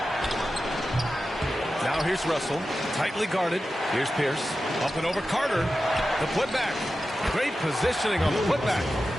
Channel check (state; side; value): normal; both; correlation 0.92